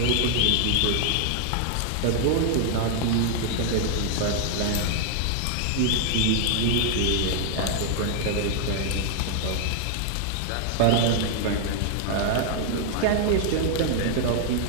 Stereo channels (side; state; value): both; different; correlation 0.00